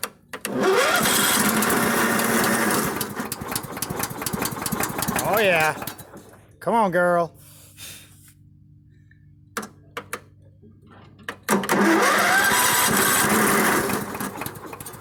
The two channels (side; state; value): both; identical; correlation 1.00